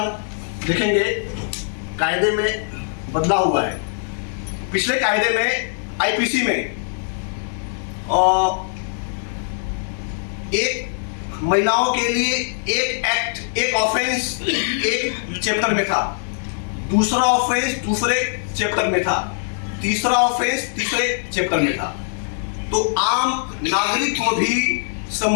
देखेंगे कायदे में बदलाव हुआ है। पिछले कायदे में आईपीसी में एक महिलाओं के लिए एक एक्ट, एक ऑफेंस एक चैप्टर में था, दूसरा ऑफेंस दूसरे चैप्टर में था, तीसरा ऑफेंस तीसरे चैप्टर में था। तो आम नागरिक को भी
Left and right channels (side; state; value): right; silent; digital silence